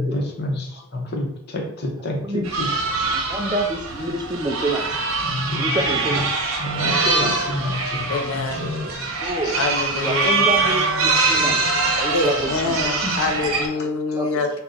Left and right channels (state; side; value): normal; both; correlation 0.17